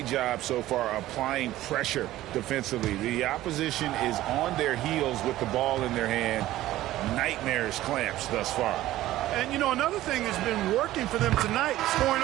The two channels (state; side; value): quieter; left; 15.2 dB